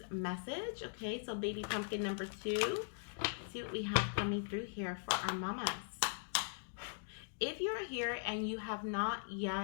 message. Okay, so baby pumpkin number 2. Let's see what we have coming through here for our mamas. If you're here and you have not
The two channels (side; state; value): right; silent; digital silence